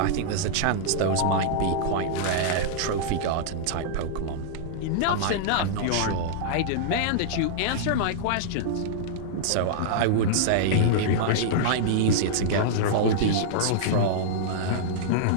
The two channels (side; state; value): both; different; correlation -0.02